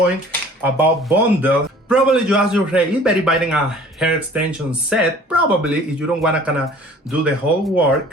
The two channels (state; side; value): normal; both; correlation 0.49